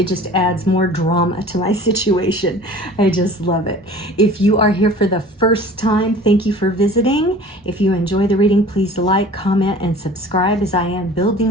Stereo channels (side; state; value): both; normal; correlation 0.44